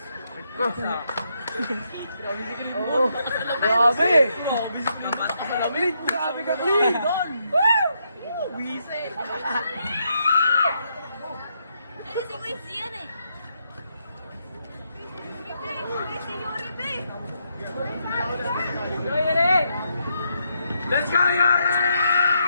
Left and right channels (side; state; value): both; inverted; correlation -0.79